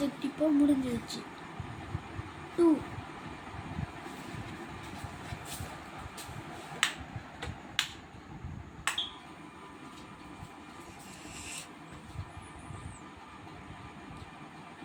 இப்போ முடிஞ்சிடுச்சு. 2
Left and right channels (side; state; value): both; identical; correlation 1.00